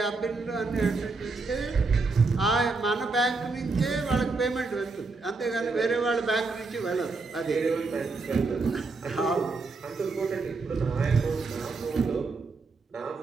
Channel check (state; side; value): quieter; left; 3.9 dB